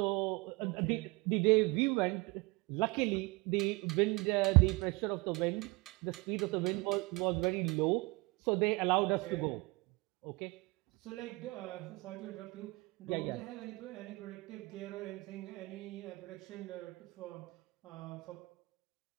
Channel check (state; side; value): quieter; left; 25.6 dB